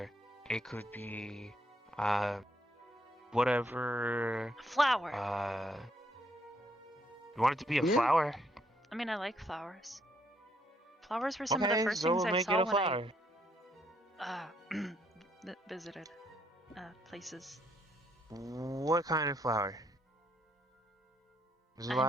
it could be whatever. Flower. You want it to be a Yeah. flower? I mean, I like flowers. Flowers were some of Okay, the first so things we'll I make saw it a when flower. I visited places. What kind of flower? There's a lot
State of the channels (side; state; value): both; normal; correlation 0.72